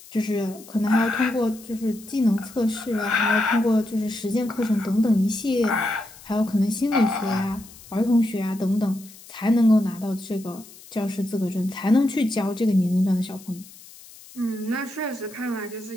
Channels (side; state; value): left; noise; hiss, 20 dB below the sound